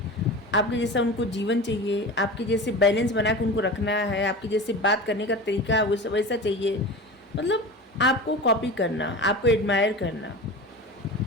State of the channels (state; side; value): normal; both; correlation 0.31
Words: आपके जैसा उनको जीवन चाहिए, आपके जैसे बैलेंस बना के उनको रखना है, आपके जैसे बात करने का तरीका वो सब वैसा चाहिए। मतलब आपको कॉपी करना, आपको एडमायर करना,